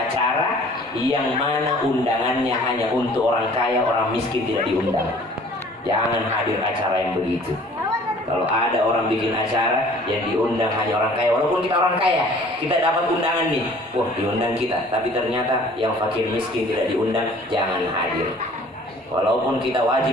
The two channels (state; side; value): normal; both; correlation 0.52